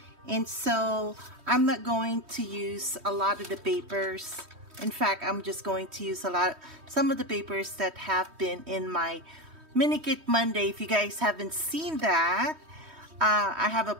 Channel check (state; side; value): late; left; 3.1 ms